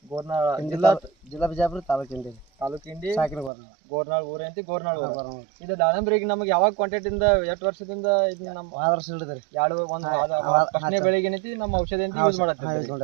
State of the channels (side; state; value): left; drops out; at 3.5 s